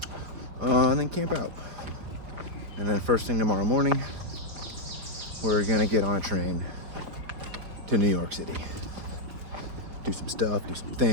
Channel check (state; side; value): late; left; 4.8 ms